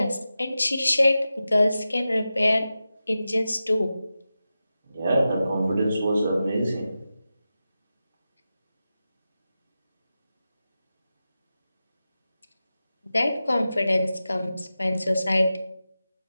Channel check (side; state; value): both; inverted; correlation -0.93